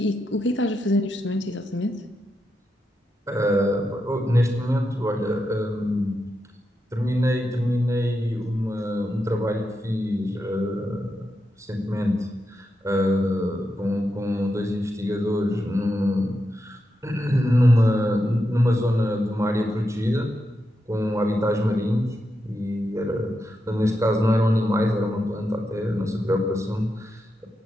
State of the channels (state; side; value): normal; both; correlation 0.86